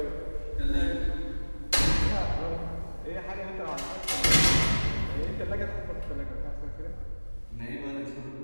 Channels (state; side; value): inverted; both; correlation -1.00